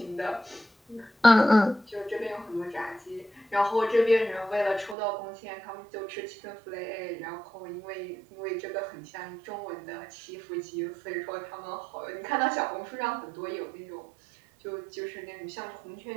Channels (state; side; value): drops out; left; at 5.0 s